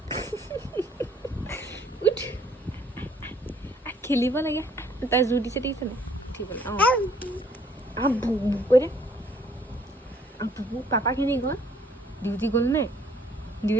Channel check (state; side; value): normal; both; correlation 0.62